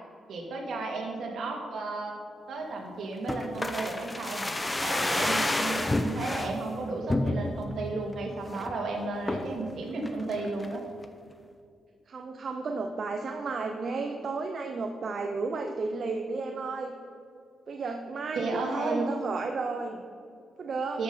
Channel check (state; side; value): normal; both; correlation 0.85